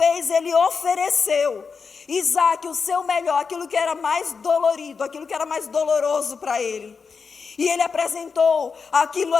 Ele ofereceu Isaque, o seu melhor, aquilo que era mais dolorido, aquilo que era mais doloroso para ele. E ele apresentou aquilo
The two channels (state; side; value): quieter; right; 5.3 dB